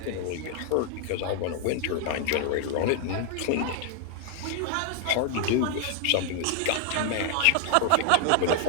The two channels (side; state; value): both; different; correlation 0.00